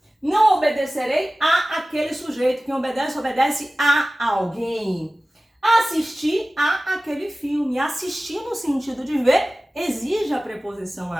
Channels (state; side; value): normal; both; correlation 0.97